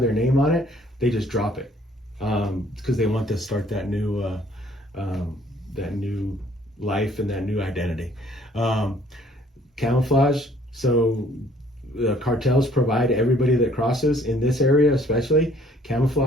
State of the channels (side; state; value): both; normal; correlation 0.59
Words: their name on it. They just drop it because they want to start that new life and that new identity. Camouflage. So the cartels provide everybody that crosses in this area, especially